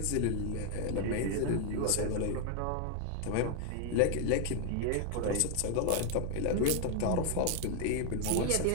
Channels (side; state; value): both; different; correlation 0.00